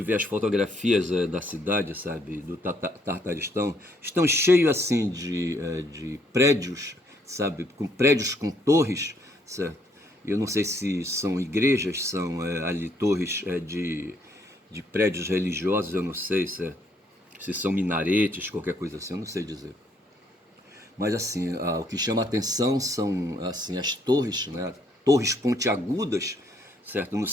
vê as fotografias da cidade, sabe, do Tartaristão, estão cheios assim de prédios, sabe, com prédios com torres, certo? Eu não sei se são igrejas, são ali torres de prédios religiosos, eu não sei se são minaretes, qualquer coisa assim, eu não sei dizer. Mas assim, o que chama a atenção são assim, as torres, né? Torres pontiagudas, certo? Não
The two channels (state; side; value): normal; both; correlation 0.69